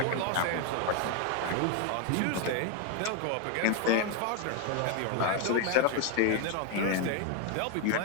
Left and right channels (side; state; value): both; different; correlation 0.01